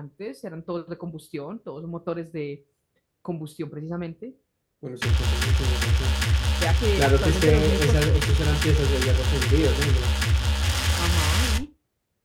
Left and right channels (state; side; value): identical; both; correlation 1.00